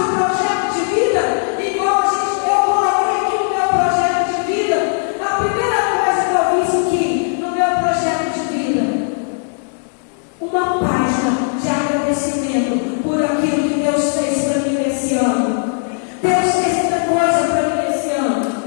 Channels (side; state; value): right; silent; digital silence